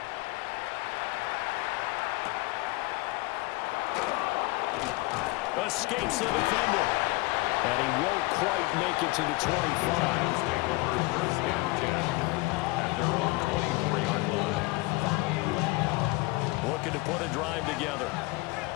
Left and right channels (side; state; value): right; quieter; 23.3 dB